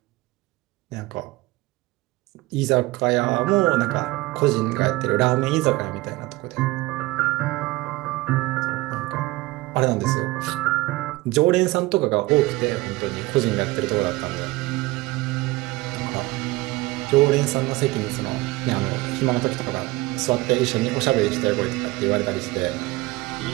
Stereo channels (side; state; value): left; quieter; 20.6 dB